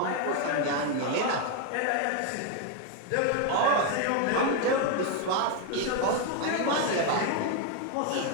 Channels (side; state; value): both; different; correlation 0.01